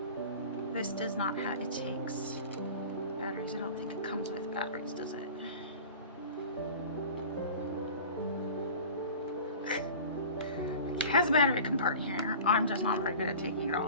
This does not have, it takes batteries. I don't think it comes with batteries, does it? It has a battery compartment here. I'm just not very good at taking it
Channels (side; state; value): both; inverted; correlation -0.39